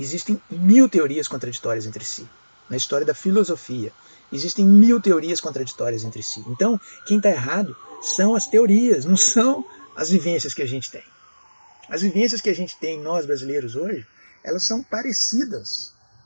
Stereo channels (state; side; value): inverted; both; correlation -1.00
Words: 1000 teorias contraditórias entre si. Na história da filosofia, existem 1000 teorias contraditórias entre si. Então, quem está errado são as teorias, não são as vivências que a gente tem. As vivências que a gente tem, nós brasileiros hoje, elas são parecidas.